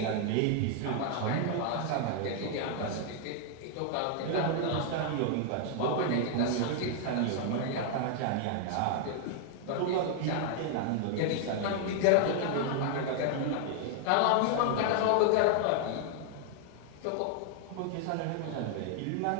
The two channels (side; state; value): both; different; correlation 0.00